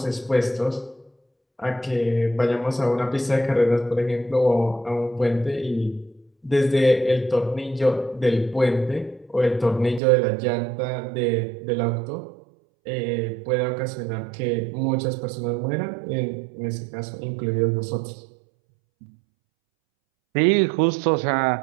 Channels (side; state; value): left; drops out; at 10.0 s